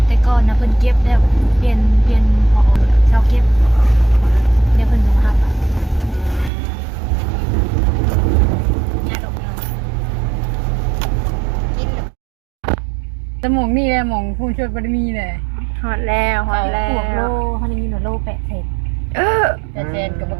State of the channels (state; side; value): drops out; left; at 6.5 s